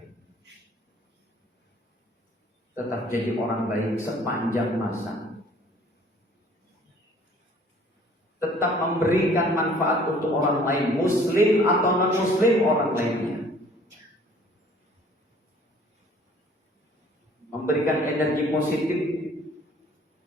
Tetap jadi orang baik sepanjang masa. Tetap memberikan manfaat untuk orang lain, muslim atau non-muslim orang lainnya. Memberikan energi positif.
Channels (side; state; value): both; normal; correlation 0.54